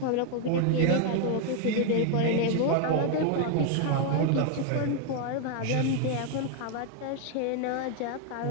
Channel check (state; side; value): different; both; correlation 0.01